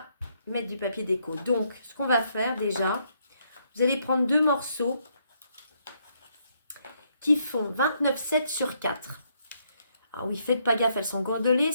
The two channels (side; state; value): both; inverted; correlation -0.73